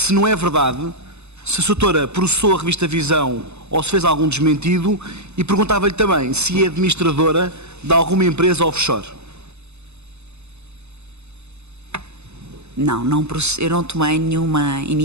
não é verdade, se a doutora processou a revista Visão ou se fez algum desmentido, e perguntava-lhe também se é administradora de alguma empresa offshore. Não, eu não tomei nenhuma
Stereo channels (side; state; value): left; late; 0.81 ms